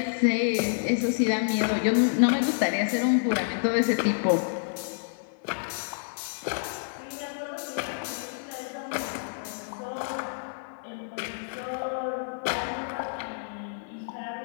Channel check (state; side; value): silent; right; digital silence